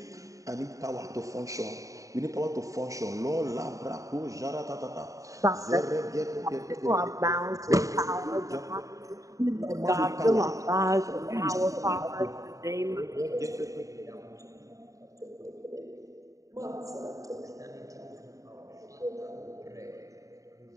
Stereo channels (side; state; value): left; late; 0.16 ms